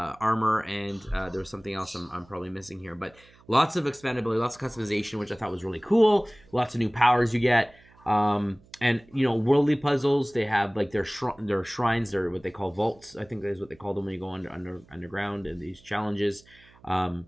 armor, and there's something else I'm probably missing here, but lots of expandability, lots of customization, which I thought was really cool. Lots of new powers you get. And worldly puzzles. They have like their shrines. They're what they call vaults. I think that is what they call them when you go underground and these challenges. Um,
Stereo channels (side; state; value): right; noise; hum, 27 dB below the sound